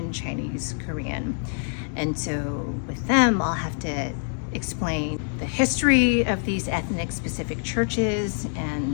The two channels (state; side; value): silent; right; 61 dB below the other